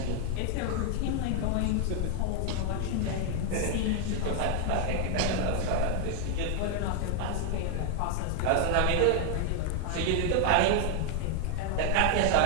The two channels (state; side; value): different; both; correlation 0.00